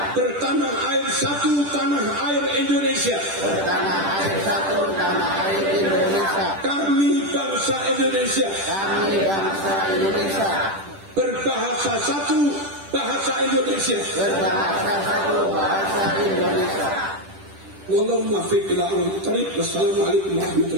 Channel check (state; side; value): late; left; 10 ms